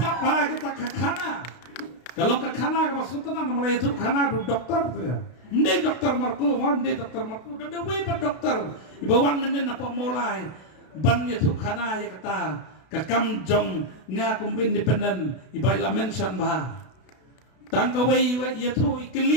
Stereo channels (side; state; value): right; late; 32 ms